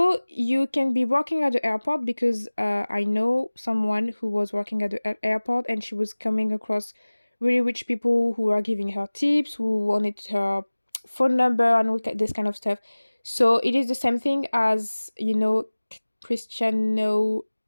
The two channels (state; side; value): inverted; both; correlation -1.00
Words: you can be working at the airport, because I know someone who was working at the airport, and she was coming across really rich people who are giving her tips, who wanted her phone number and all this kind of stuff. So it is the same thing as, Cristiano